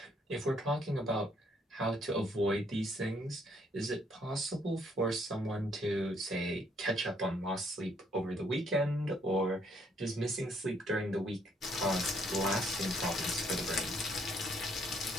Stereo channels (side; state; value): both; normal; correlation 0.68